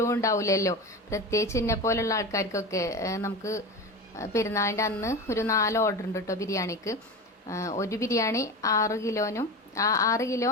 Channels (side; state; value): both; normal; correlation 0.26